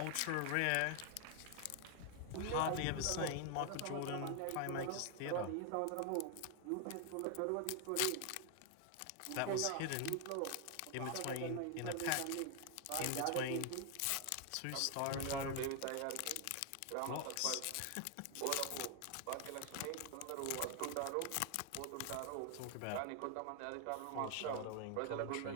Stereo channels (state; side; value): different; both; correlation 0.00